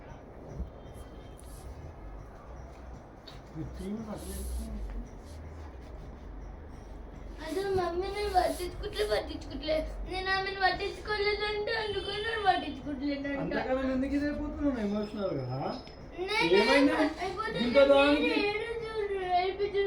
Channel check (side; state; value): both; identical; correlation 1.00